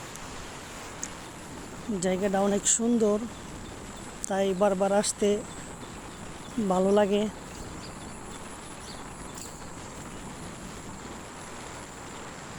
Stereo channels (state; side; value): identical; both; correlation 1.00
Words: জায়গাটা অনেক সুন্দর, তাই বারবার আসতে ভালো লাগে।